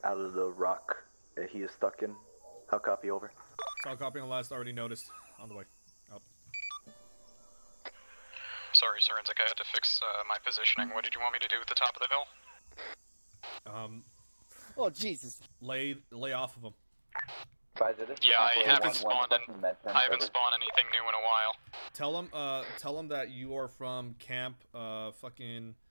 out of the rock that he is stuck in. How copy, over? Solid copy on the last, already noticed. On the way. Out. Sorry, SorensiC, I had to fix my positioning. What did you want me to do at the top of the hill? Oh, Jesus. Lay off of him. Yeah, I haven't spawned anything new in a while. Tell him that you are from Camp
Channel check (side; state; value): both; inverted; correlation -1.00